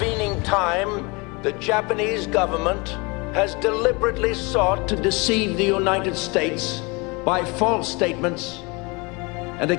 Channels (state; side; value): quieter; right; 28.0 dB